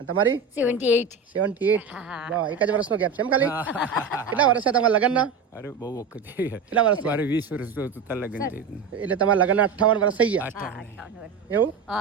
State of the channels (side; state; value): left; quieter; 5.3 dB